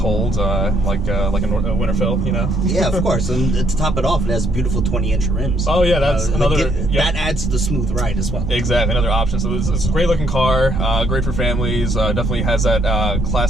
like a Winterfell, you know. Yeah, of course, and to top it off, it has beautiful 20-inch rims. Oh yeah, that's another. That adds to the smooth ride as well. Exactly, another option. So it's a great looking car, great for families. Definitely has that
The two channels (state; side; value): normal; both; correlation 0.70